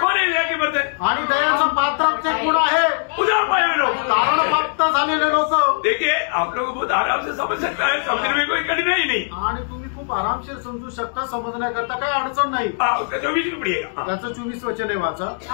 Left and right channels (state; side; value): silent; right; digital silence